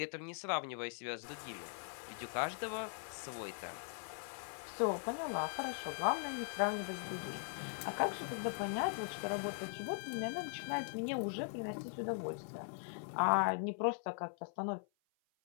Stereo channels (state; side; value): silent; right; 51 dB below the other